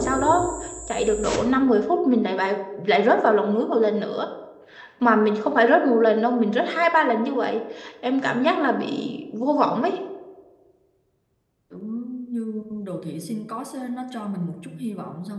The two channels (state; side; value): identical; both; correlation 1.00